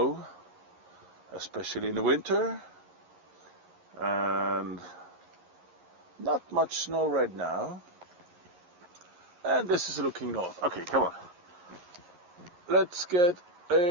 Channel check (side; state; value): left; late; 11 ms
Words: especially in the winter. And not much snow right now. And this is looking north. Okay, come on. Let's get